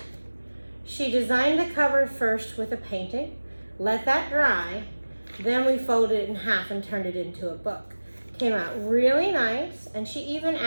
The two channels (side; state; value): both; inverted; correlation -1.00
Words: she designed the cover first with a painting, let that dry, then we folded it in half and turned it into a book. Came out really nice, and she even